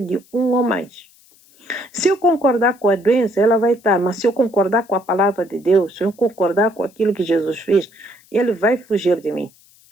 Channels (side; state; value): left; noise; hiss, 29 dB below the sound